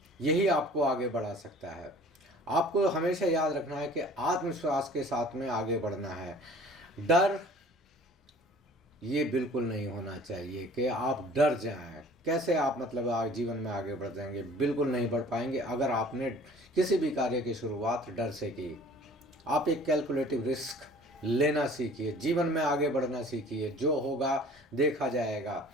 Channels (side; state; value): both; normal; correlation 0.49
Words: यही आपको आगे बढ़ा सकता है। आपको हमेशा याद रखना है कि आत्मविश्वास के साथ में आगे बढ़ना है। डर ये बिल्कुल नहीं होना चाहिए कि आप डर जाएं। कैसे आप मतलब जीवन में आगे बढ़ जाएंगे? बिल्कुल नहीं बढ़ पाएंगे अगर आपने किसी भी कार्य की शुरुआत डर से की। आप एक कैलकुलेटिव रिस्क लेना सीखिए, जीवन में आगे बढ़ना सीखिए। जो होगा देखा जाएगा।